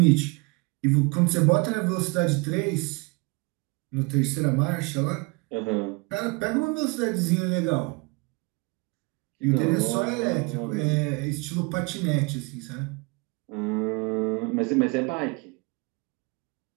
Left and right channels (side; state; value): left; quieter; 29.0 dB